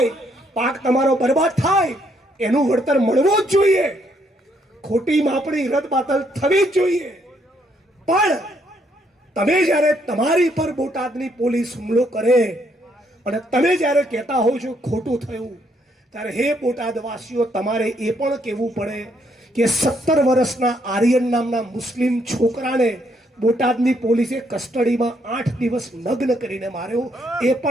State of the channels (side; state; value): both; normal; correlation 0.72